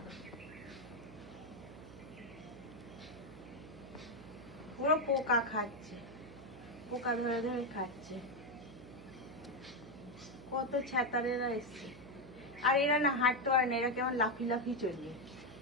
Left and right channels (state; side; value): noise; right; hum, 16 dB below the sound